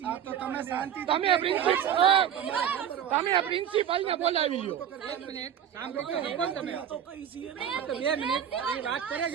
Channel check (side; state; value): left; quieter; 9.2 dB